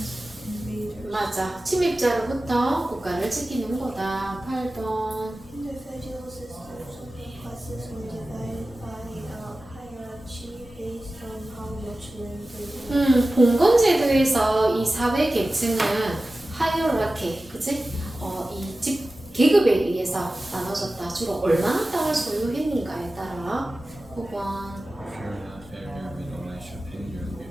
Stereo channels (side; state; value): both; normal; correlation 0.96